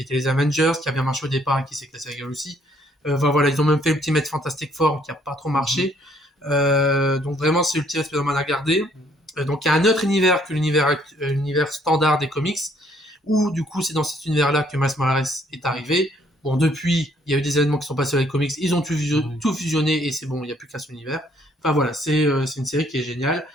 était les Avengers qui a bien marché au départ et qui s'est cassé la gueule aussi. Voilà, ils ont même fait Ultimate Fantastic Four qui a pas trop marché. Donc vraiment c'est Ultimate Spider-Man à garder. Donc il y a un autre univers que l'univers standard des comics où du coup c'est dans cet univers-là que Miles Morales est arrivé. Bon, depuis, il y a eu des événements qui sont passés sur les comics, ils ont tout fusionné et c'est bon, il n'y a plus qu'à son univers. Enfin voilà, c'est une série qui est géniale.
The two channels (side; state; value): both; normal; correlation 0.66